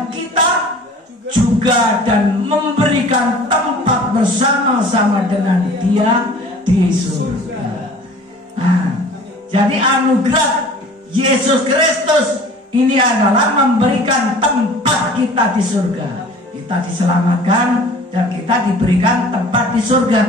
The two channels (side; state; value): both; normal; correlation 0.46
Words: kita juga dan memberikan tempat bersama-sama dengan Dia di surga. Nah, jadi anugerah Yesus Kristus ini adalah memberikan tempat kita di surga. Kita diselamatkan dan kita diberikan tempat di surga.